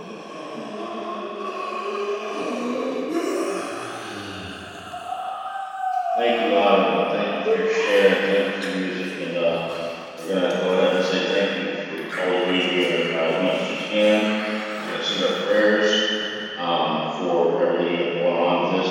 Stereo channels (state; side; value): identical; both; correlation 1.00